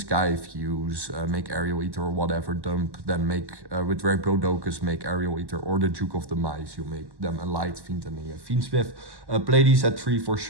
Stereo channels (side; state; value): left; late; 1.1 ms